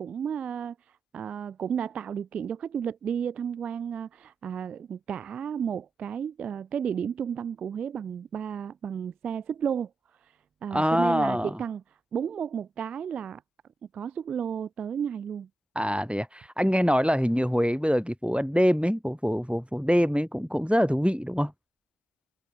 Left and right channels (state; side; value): normal; both; correlation 0.93